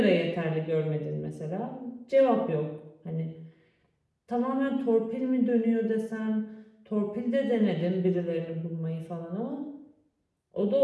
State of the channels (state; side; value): identical; both; correlation 1.00